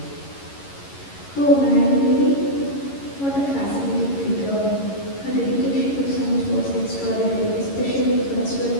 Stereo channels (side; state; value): right; late; 11 ms